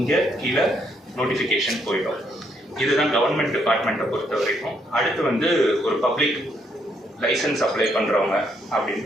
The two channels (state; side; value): normal; both; correlation 0.73